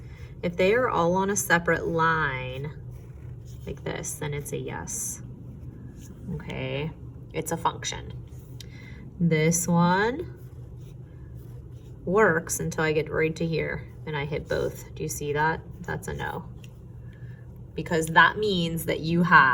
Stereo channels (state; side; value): identical; both; correlation 1.00